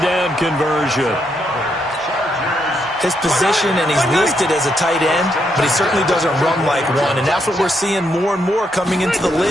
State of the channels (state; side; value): normal; both; correlation 0.78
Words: down conversion. His position, and he's listed as a tight end, but he certainly doesn't run like one, and that's what we're seeing more and more coming into the